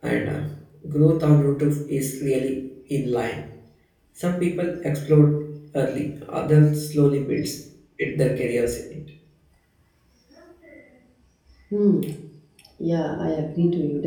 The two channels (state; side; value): identical; both; correlation 1.00